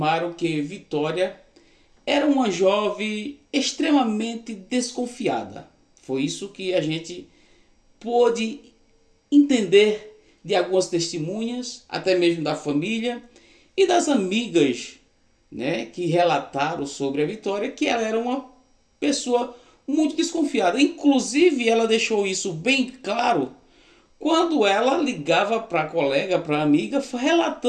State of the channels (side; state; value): both; identical; correlation 1.00